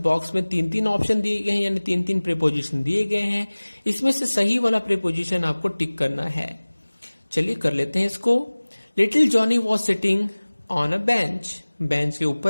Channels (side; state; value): both; inverted; correlation -1.00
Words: में 3-3 ऑप्शन दिए गए हैं, यानी 3-3 प्रीपोजिशन दिए गए हैं। इसमें से सही वाला प्रीपोजिशन आपको टिक करना है। चलिए कर लेते हैं इसको। Little Johnny was sitting on a bench. Bench के